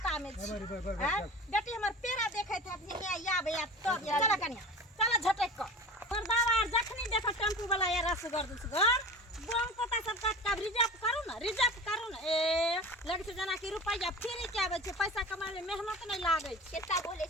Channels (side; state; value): both; normal; correlation 0.35